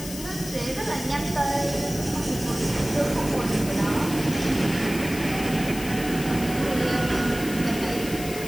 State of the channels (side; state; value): left; noise; hiss, 11 dB below the sound